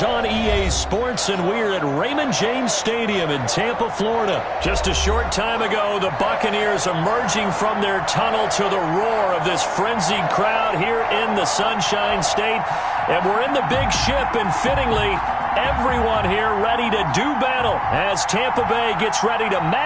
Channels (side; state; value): both; identical; correlation 1.00